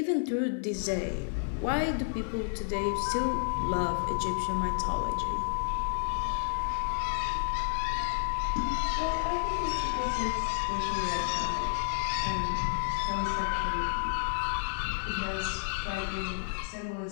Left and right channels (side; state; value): right; silent; 57 dB below the other